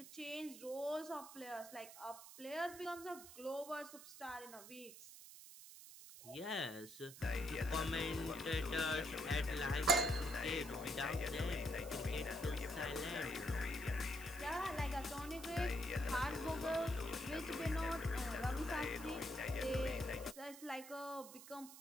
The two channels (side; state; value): right; noise; hiss, 15 dB below the sound